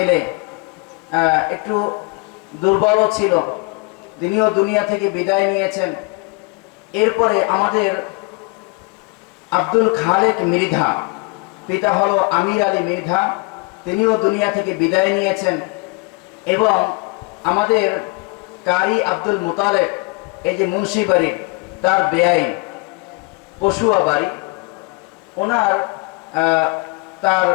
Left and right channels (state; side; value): quieter; right; 28.7 dB